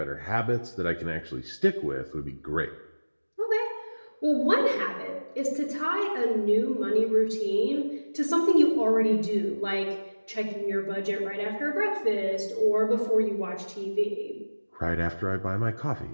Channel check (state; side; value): inverted; both; correlation -1.00